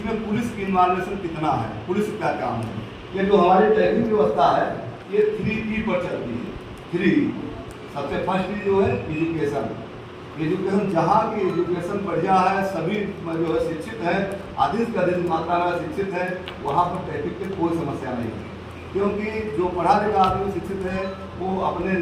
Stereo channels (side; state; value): both; identical; correlation 1.00